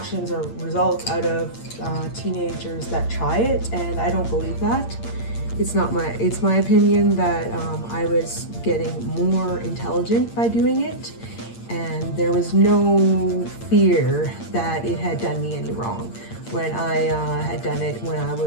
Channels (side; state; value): right; late; 8.7 ms